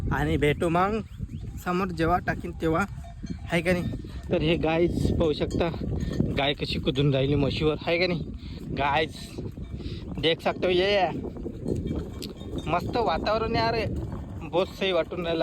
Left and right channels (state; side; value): identical; both; correlation 1.00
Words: आणि भेटू मग समोर जेव्हा टाकीन तेव्हा, आहे का नाही. तर हे गाईज पाहू शकता गाय कशी कुदून राहिली म्हशीवर, आहे का नाही गाईज. देख सकते हो ये मस्त वातावरण यार, बहुत सही वाटून